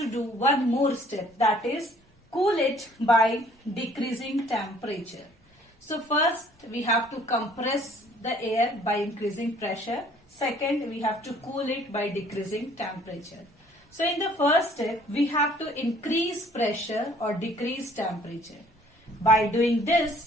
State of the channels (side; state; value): both; normal; correlation 0.58